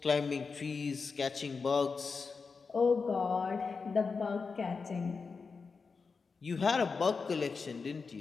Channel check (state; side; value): quieter; right; 4.9 dB